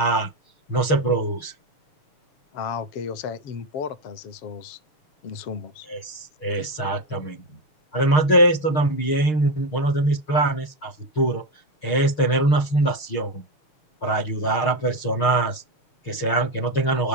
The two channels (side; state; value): right; late; 6.5 ms